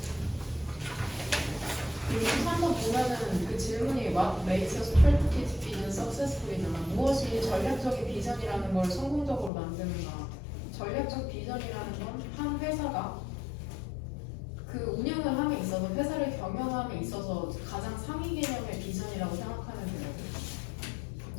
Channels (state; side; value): drops out; right; at 9.5 s